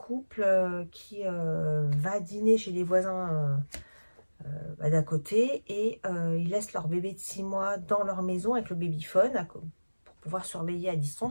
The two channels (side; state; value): both; inverted; correlation -1.00